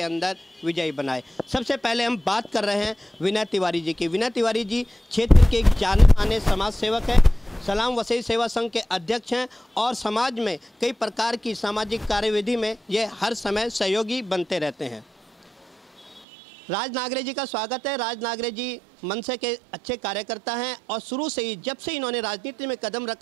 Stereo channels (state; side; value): drops out; left; at 16.2 s